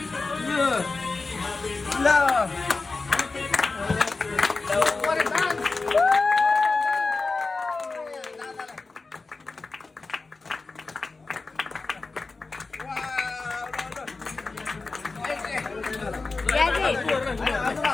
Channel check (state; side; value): quieter; right; 3.8 dB